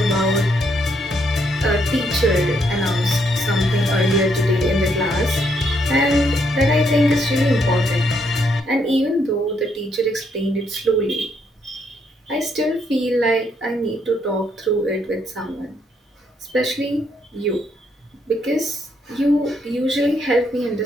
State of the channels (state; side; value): normal; both; correlation 0.74